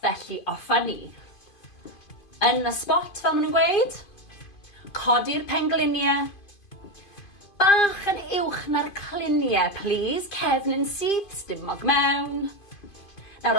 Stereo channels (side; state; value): right; late; 2.5 ms